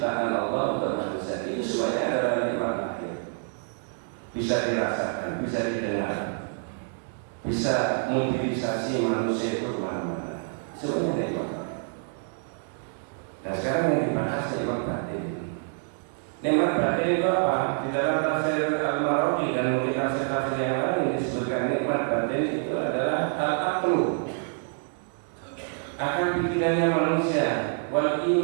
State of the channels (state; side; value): silent; left; 55 dB below the other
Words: Allah buat manusia, itu semuanya adalah nikmat batin. Bisa dirasakan, bisa didengar, bisa mobilisasi manusia itu kemana-mana. Semuanya nikmat. Dan sekarang yang dibahas nikmat batin. Nikmat batin itu apa? Di dalam tafsir Al-Marwazi dan mungkin tafsir-tafsir yang lain disebutkan nikmat batin itu adalah al-aqlu, akal pikirannya manusia, wal